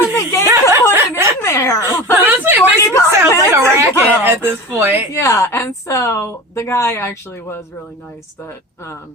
the gate to put it in there. Honestly, it makes it sound like a racket at this point. Yeah, and so the guy actually was really nice that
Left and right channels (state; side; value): normal; both; correlation 0.32